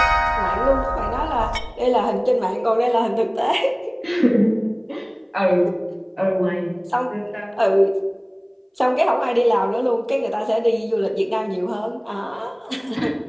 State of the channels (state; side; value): identical; both; correlation 1.00